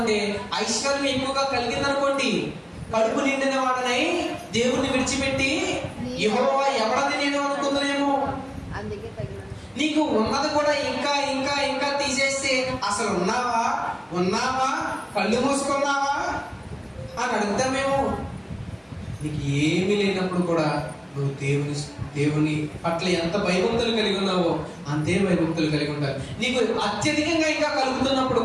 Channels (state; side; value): identical; both; correlation 1.00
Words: ఐశ్వర్యం ఎక్కువగా కలిగింది అనుకోండి, కడుపు నిండిన వాడనై దేవుణ్ణి విడిచిపెట్టి యెహోవా ఎవడని నేను అనుకుంటున్నామో. నీకు ఉన్నది కూడా ఇంకా ఇంకా ఇంకా తీసేస్తే, అసలు ఉన్నావా కళ్ళు మూసుకున్నావా అని అడుగుతామేమో. నీకు ఏమీ లేనప్పుడు కూడా నువ్వు దేవుని పట్ల ఎంత భయభక్తులు కలిగి ఉన్నావో అంతే భయభక్తులు కలిగి ఉండాలి. నీకు అత్యధికంగా ఇంకా కలుగుతున్నప్పుడు